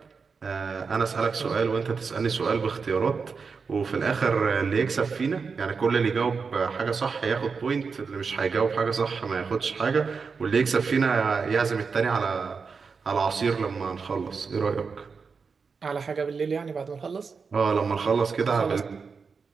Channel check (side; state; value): left; quieter; 5.2 dB